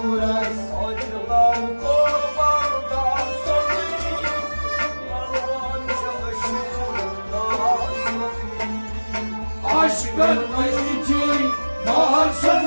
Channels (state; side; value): inverted; both; correlation -1.00